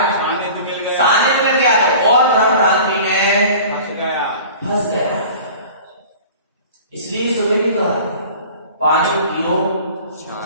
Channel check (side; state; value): both; inverted; correlation -0.42